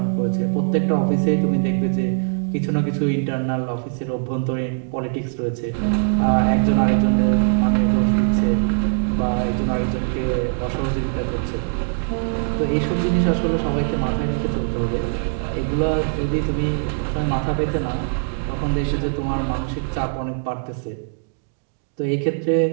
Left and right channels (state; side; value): silent; left; 63 dB below the other